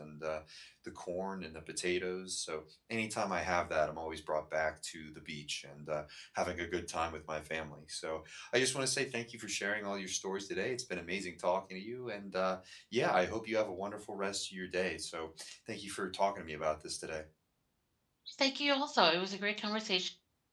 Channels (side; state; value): both; identical; correlation 1.00